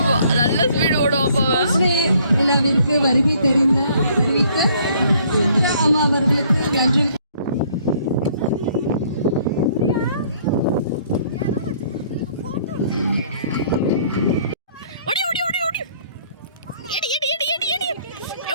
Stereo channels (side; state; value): both; inverted; correlation -0.61